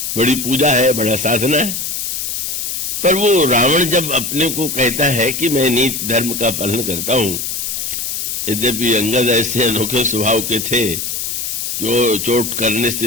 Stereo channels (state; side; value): noise; left; hiss, 3 dB below the sound